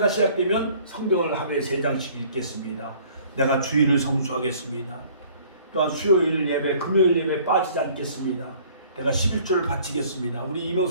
시작되면 성경을 하루에 3장씩 읽겠습니다. 내가 주일을 성수하겠습니다. 또한 수요일 예배, 금요일 예배 빠지지 않겠습니다. 내가 11조를 바치겠습니다. 우리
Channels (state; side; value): inverted; both; correlation -0.54